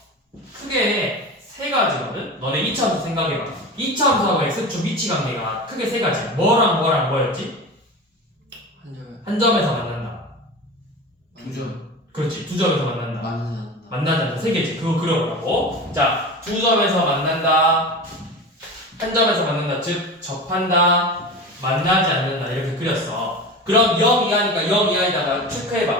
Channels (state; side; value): normal; both; correlation 0.30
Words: 크게 세 가지거든. 너네 이차함수 생각해봐. 이차함수하고 x축 위치 관계가 크게 세 가지야. 뭐랑 뭐랑 뭐였지? 한 점에 한 점에서 만난다. 두 점 그렇지. 두 점에서 만난다. 만나지 않는다. 세 개지. 그거 그려보라고. 자, 두 점에서 만난다. 한 점에서 만난다. 즉 접한다. 만나지 않는다. 이렇게 그렸어. 그럼 0 이하니까 0 이하에다가